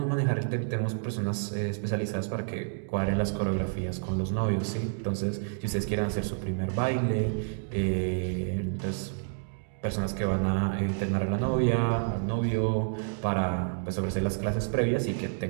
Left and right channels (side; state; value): left; silent; digital silence